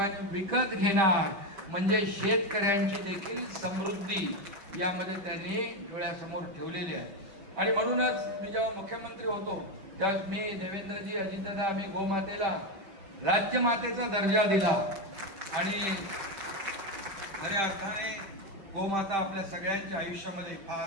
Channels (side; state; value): left; late; 5.1 ms